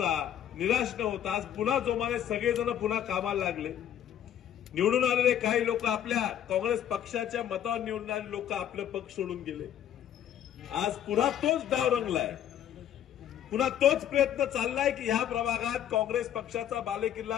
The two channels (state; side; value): quieter; right; 10.5 dB